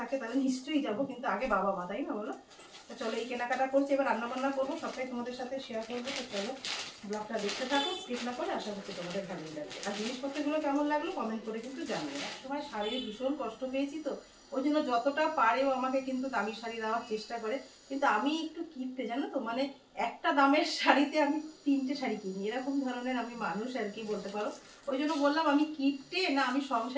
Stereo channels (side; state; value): both; identical; correlation 1.00